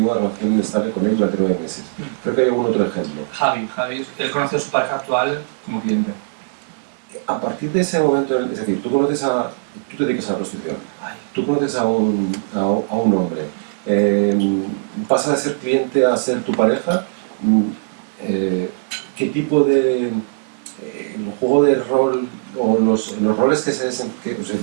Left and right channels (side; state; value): left; silent; digital silence